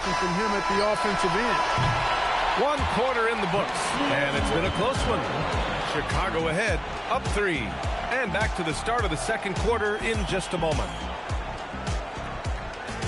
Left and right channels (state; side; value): identical; both; correlation 1.00